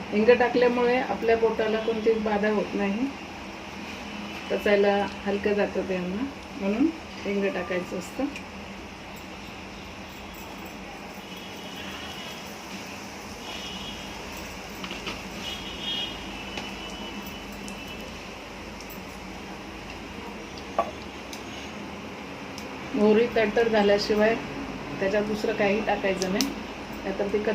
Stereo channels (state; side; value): identical; both; correlation 1.00